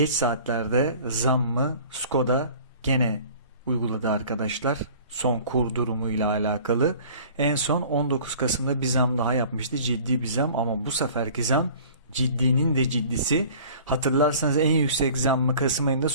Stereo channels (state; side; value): inverted; both; correlation -0.47